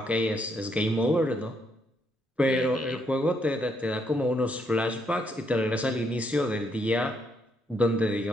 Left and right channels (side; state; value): both; normal; correlation 0.75